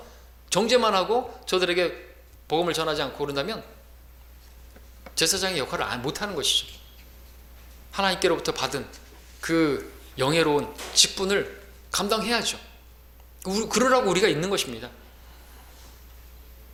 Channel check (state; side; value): identical; both; correlation 1.00